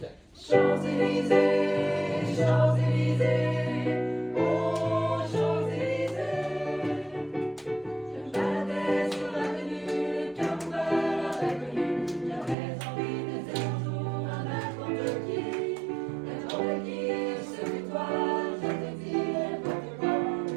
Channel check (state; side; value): drops out; left; at 12.6 s